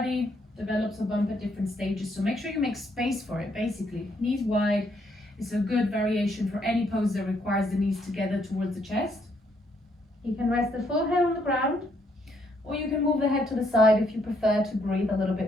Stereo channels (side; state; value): both; normal; correlation 0.72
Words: develops a bump at different stages, so make sure you make space for it, basically. Knees wide is a good variation for any pose that requires the knees together towards the chest. You can rest the full head on the ground, or you can move the head to the side if you prefer to breathe a little